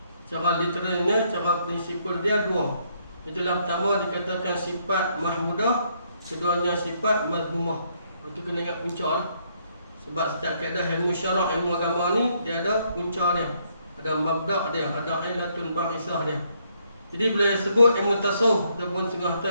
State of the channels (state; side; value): inverted; both; correlation -0.72